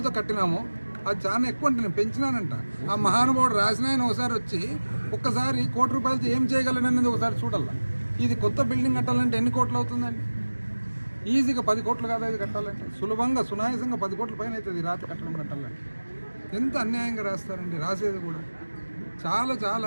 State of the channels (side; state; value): both; inverted; correlation -1.00